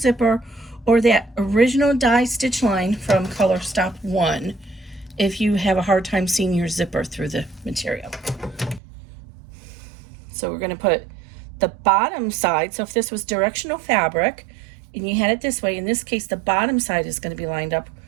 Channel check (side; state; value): left; drops out; at 8.8 s